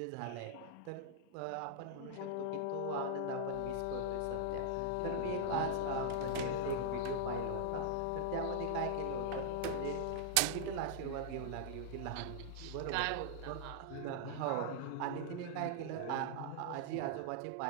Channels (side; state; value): both; different; correlation -0.01